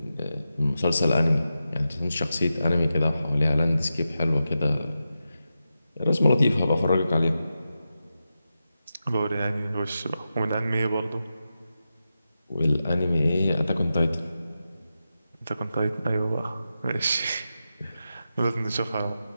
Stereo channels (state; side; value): inverted; both; correlation -0.90